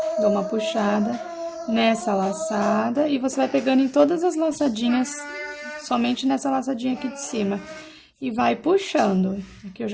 dou uma puxada nessa laçada e você vai pegando em todas as laçadinhas, somente nessa laçadinha aqui de cima. E vai puxando. Aqui eu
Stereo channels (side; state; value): both; identical; correlation 1.00